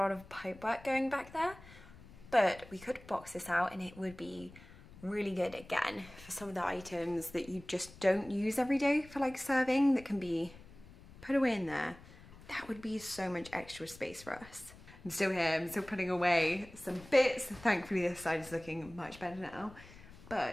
of pipe work going back there, but we could box this out and it would be really good again for some of the items that you just don't use every day for like serving, that can be put away in there. That would be so much extra space for us. I'm still here, I'm still putting away some bits. Thankfully this side is looking much better now,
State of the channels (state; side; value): noise; left; rumble, 20 dB below the sound